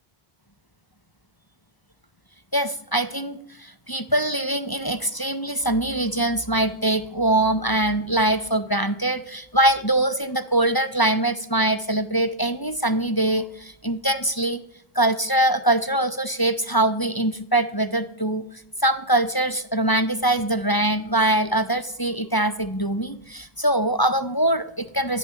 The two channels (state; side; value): late; right; 1.0 ms